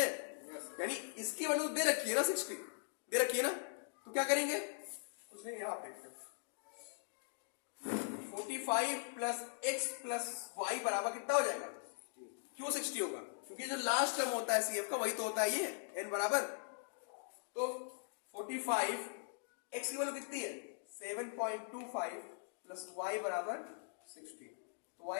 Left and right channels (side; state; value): right; silent; digital silence